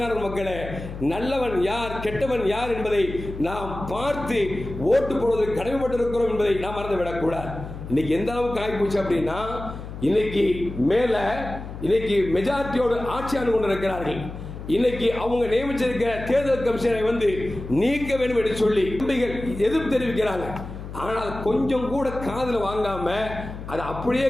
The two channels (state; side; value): noise; left; hum, 10 dB below the sound